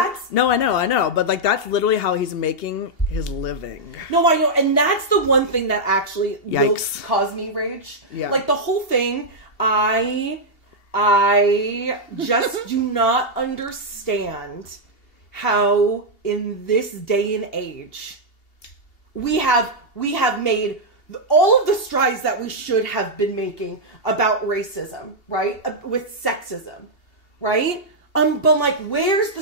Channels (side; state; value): right; late; 2.8 ms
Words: no, I know, but like that's literally how he's making his living. No, I know, and that's the one thing that actually will Yikes. cause me rage. Yeah. Like the whole thing, I just do not understand how in this day and age we have made all of the strides that we should have been making about racism, right? With sexism, right? But like, where's the